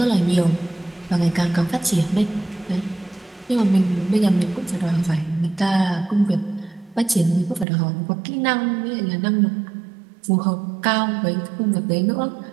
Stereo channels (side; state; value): left; drops out; at 7.7 s